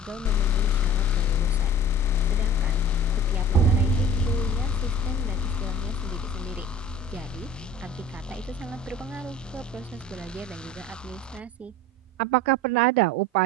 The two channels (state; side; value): normal; both; correlation 0.42